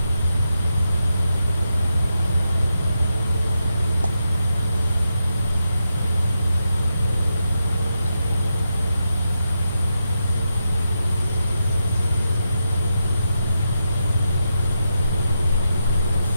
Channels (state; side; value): inverted; both; correlation -0.86